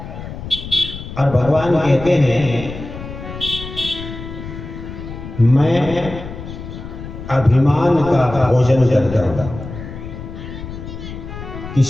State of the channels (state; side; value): noise; left; rumble, 10 dB below the sound